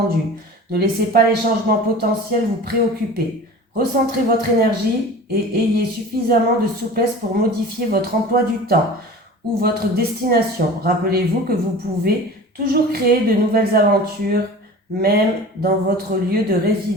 Ne laissez pas les changements potentiels vous préoccuper. Recentrez votre énergie et ayez suffisamment de souplesse pour modifier votre emploi du temps ou votre destination. Rappelez-vous que vous pouvez toujours créer de nouvelles aventures, même dans votre lieu de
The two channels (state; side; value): normal; both; correlation 0.38